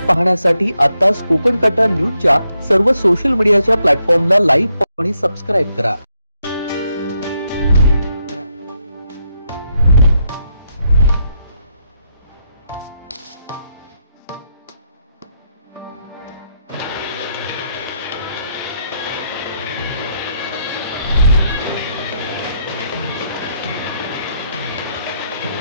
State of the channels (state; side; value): inverted; both; correlation -0.78